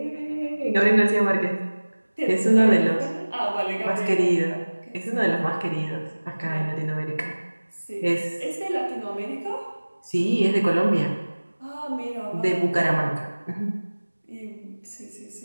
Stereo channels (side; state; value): both; inverted; correlation -1.00